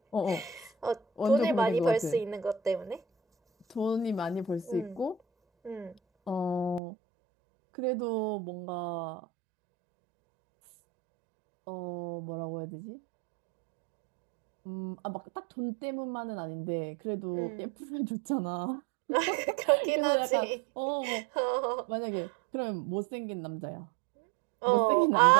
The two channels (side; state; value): left; drops out; at 6.8 s